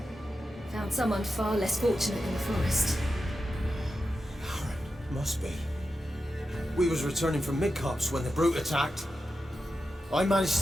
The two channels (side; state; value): both; normal; correlation 0.90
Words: Found someone far less fortunate in the forest. Must be. We was returning from Midcops when the brute attacked. I managed